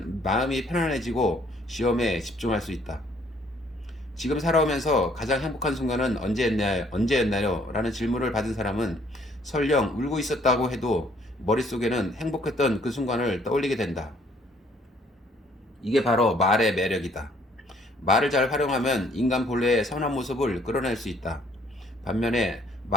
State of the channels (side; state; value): both; normal; correlation 0.63